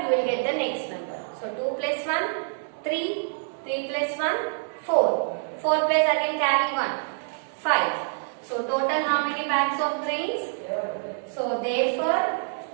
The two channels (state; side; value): silent; left; digital silence